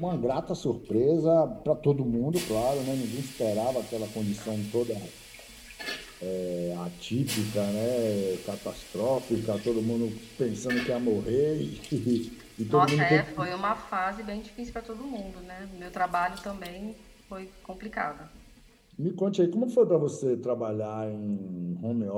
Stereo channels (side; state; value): both; identical; correlation 1.00